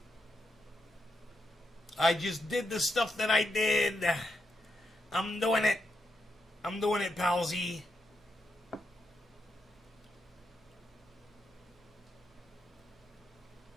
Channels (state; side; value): normal; both; correlation 0.84